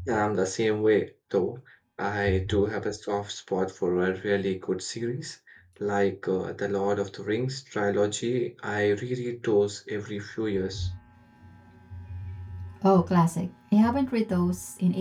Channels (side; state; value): both; identical; correlation 1.00